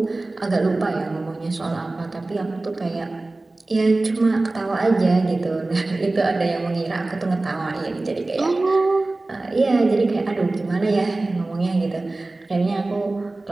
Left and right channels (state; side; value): quieter; left; 3.1 dB